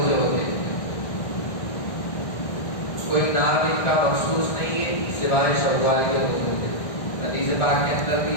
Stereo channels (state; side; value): late; right; 1.6 ms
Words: ہوتے ہیں. کوئی نام ان کا مخصوص نہیں ہے سوائے شوال کے روزوں کے. حدیث پاک کے اندر